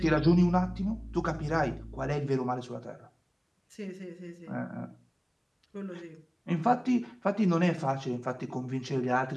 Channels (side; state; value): both; identical; correlation 1.00